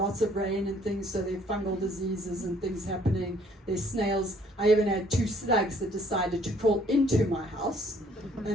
of rain and things, so there are fungal diseases and things happening. There's snails. I even had 2 slugs that decided to crawl into my house,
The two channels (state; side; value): normal; both; correlation 0.61